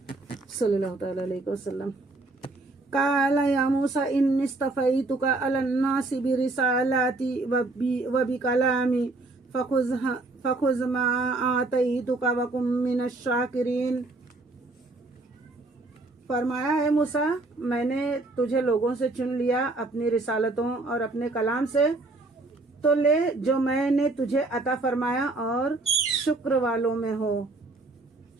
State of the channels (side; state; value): left; quieter; 3.1 dB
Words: صلی اللہ تعالی علیہ وسلم. قال یا موسیٰ انی اصطفیتک علی الناس برسالاتی وبکلامی فخذ ما آتیتک وکن من الشاکرین. فرمایا ہے موسیٰ میں نے تجھے لوگوں سے چن لیا اپنی رسالتوں اور اپنے کلام سے، تو لے جو میں نے تجھے عطا فرمایا اور شکر والوں میں ہو.